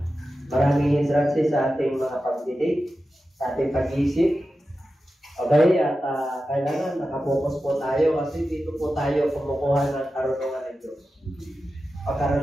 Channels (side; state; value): both; normal; correlation 0.92